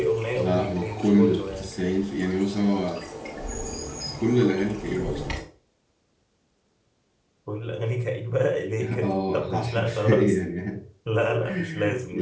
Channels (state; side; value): identical; both; correlation 1.00